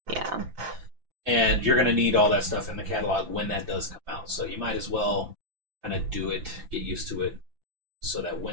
Yeah. And you're going to need all that stuff in the catalog when that does come out. So you might as well kind of do it, get used to it, so that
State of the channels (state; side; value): late; left; 5.9 ms